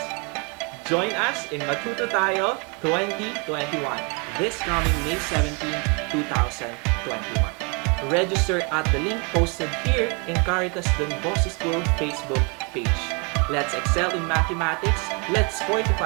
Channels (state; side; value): quieter; left; 33.3 dB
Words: Join us in Matuto Tayo 2021 this coming May 17, 2021. Register at the link posted here in Caritas Don Bosco School Facebook page. Let's excel in mathematics. Let's